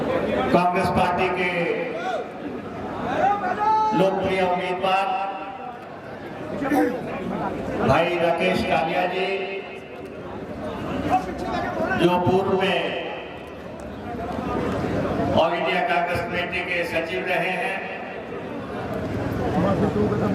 कांग्रेस पार्टी के लोकप्रिय उम्मीदवार भाई राकेश कालिया जी, जो पूर्व में ऑल इंडिया कांग्रेस कमेटी के सचिव रहे हैं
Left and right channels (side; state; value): both; identical; correlation 1.00